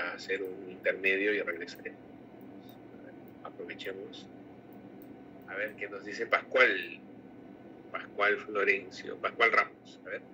hacer un intermedio y regresaremos. Aprovechemos. A ver qué nos dice Pascual Florencio, Pascual Ramos. A ver.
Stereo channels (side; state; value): both; identical; correlation 1.00